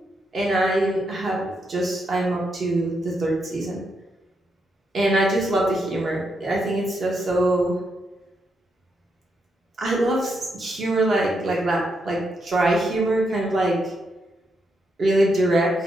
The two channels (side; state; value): both; normal; correlation 0.81